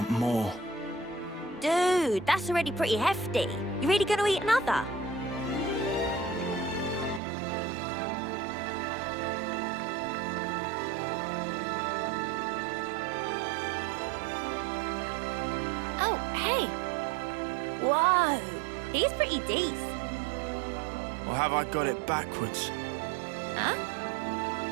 more. Dude, that's already pretty hefty. You really gonna eat another? Oh, hey. Whoa, he's pretty decent. Or have I got it backwards? Huh?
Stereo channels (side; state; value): left; drops out; at 7.2 s